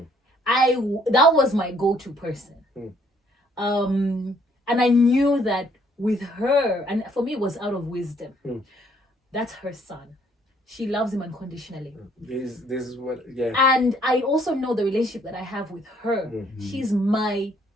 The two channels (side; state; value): both; normal; correlation 0.64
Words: was my go-to person. And I knew that with her, and for me it was out of wisdom. That's her son. She loves him unconditionally. This is what, yeah. And I also know the relationship that I have with her. She's my